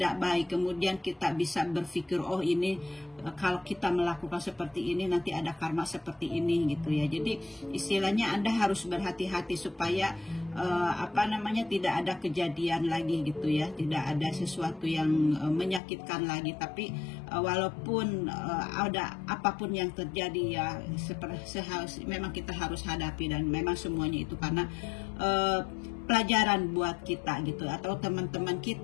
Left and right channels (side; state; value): right; drops out; at 15.8 s